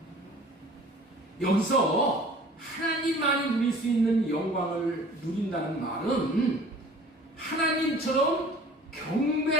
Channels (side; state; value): both; normal; correlation 0.48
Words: 거예요. 여기서 하나님만이 누릴 수 있는 영광을 누린다는 말은 하나님처럼